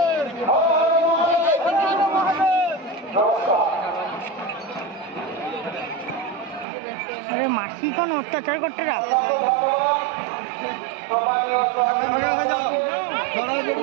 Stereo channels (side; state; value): left; drops out; at 6.7 s